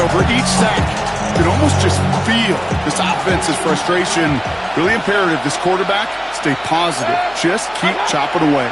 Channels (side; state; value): left; noise; hum, 28 dB below the sound